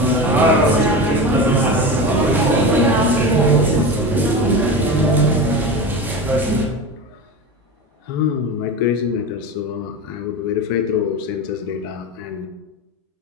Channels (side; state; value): both; normal; correlation 0.25